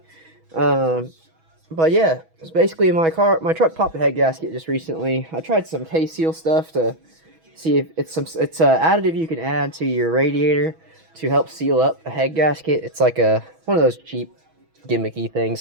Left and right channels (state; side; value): late; left; 6.2 ms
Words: But yeah, it's basically my truck popped a head gasket just recently. I tried some K-Seal stuff to see if it's it's a additive you can add to your radiator to help seal up a head gasket. It's like one of those cheap gimmicky things